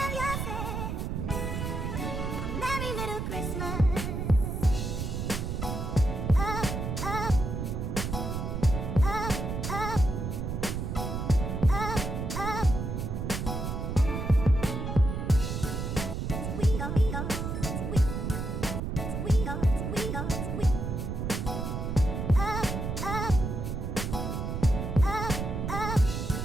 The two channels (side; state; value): right; noise; rumble, 3 dB below the sound